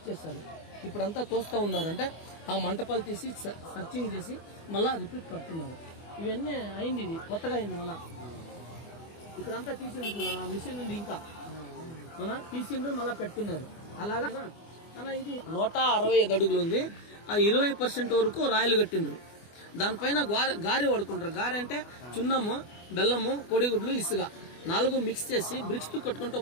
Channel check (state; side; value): late; right; 24 ms